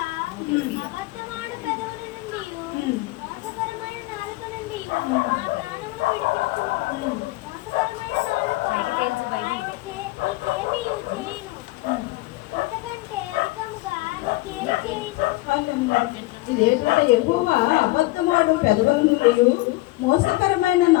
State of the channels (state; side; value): quieter; right; 20.3 dB